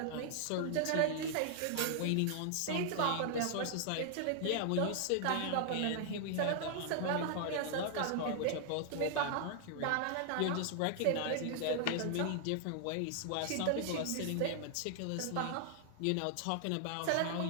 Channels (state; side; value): different; both; correlation 0.00